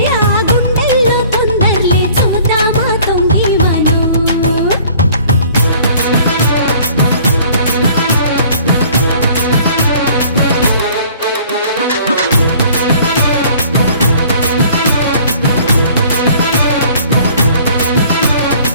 ఆ గుండెల్లో తొందరలే చూద్దామా తొంగి మనం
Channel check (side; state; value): both; inverted; correlation -0.53